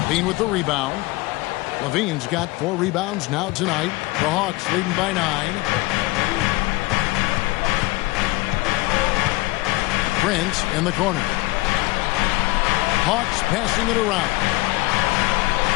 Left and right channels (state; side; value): quieter; right; 22.0 dB